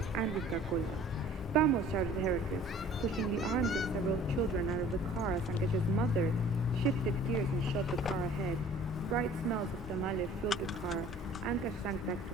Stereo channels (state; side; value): normal; both; correlation 0.50